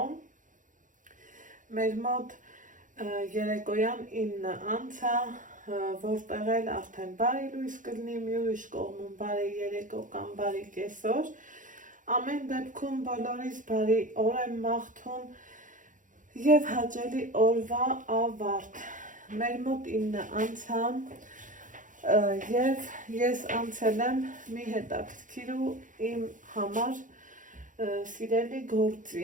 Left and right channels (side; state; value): left; late; 0.38 ms